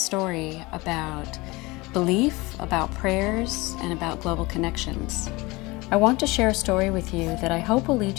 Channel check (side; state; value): right; quieter; 22.9 dB